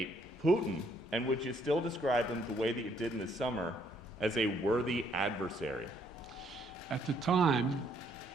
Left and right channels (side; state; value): both; normal; correlation 0.68